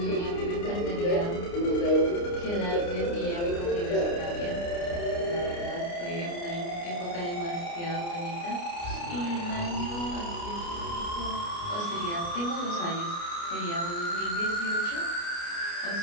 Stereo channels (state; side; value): late; right; 29 ms